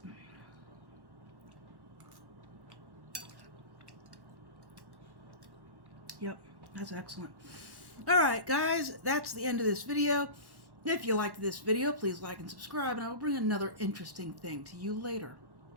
Yep, that's excellent. Alright, guys, that's the end of this video. If you liked this video, please like and subscribe, and I will bring another interesting thing to you later.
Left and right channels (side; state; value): left; late; 1.1 ms